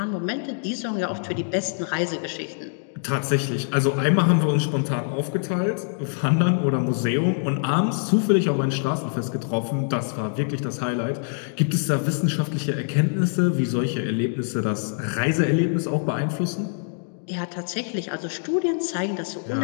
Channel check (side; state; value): right; silent; digital silence